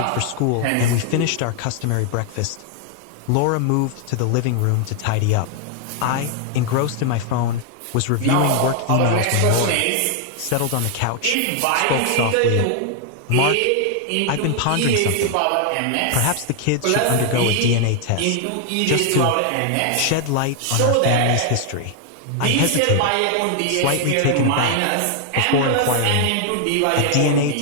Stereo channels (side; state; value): both; different; correlation 0.00